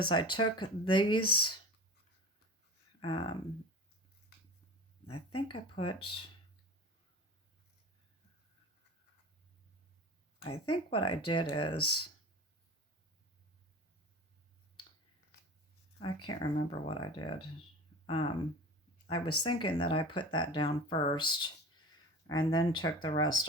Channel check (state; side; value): normal; both; correlation 0.35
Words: I took these, I think what I did is, I can't remember what I did. I was thinking that I put that down first and then took the rest